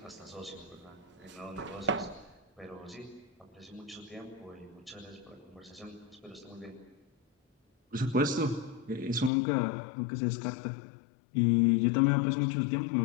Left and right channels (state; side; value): drops out; right; at 9.3 s